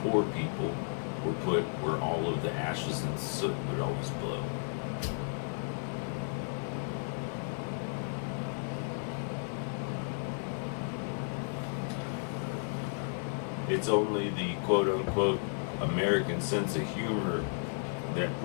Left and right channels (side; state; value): right; silent; 55 dB below the other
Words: poor people were put where all of the ashes and soot would always blow. It's only the quote-unquote American sense of humor that